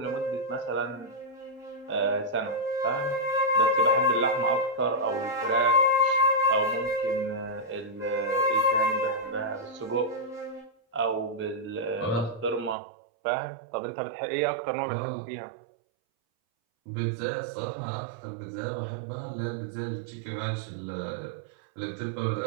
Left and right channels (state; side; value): drops out; left; at 12.8 s